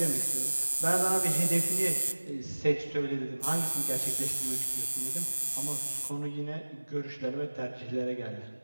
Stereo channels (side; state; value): both; inverted; correlation -1.00